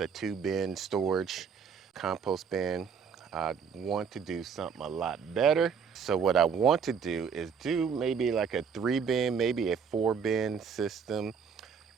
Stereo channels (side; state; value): left; quieter; 6.4 dB